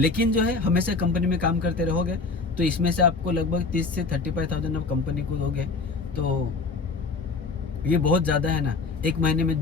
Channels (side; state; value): right; quieter; 4.0 dB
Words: जो है हमेशा कंपनी में काम करते रहोगे तो इसमें से आपको लगभग 30 से 35,000 आप कंपनी को दोगे तो ये बहुत ज़्यादा है ना, 1 महीने में